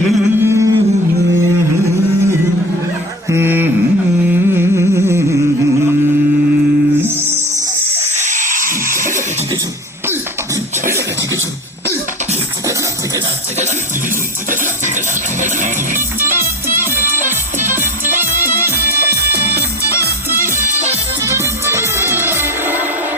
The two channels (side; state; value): both; normal; correlation 0.33